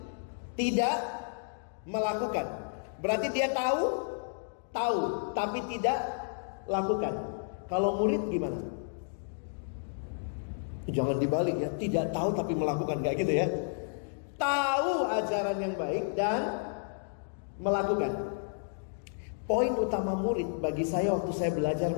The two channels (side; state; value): right; silent; digital silence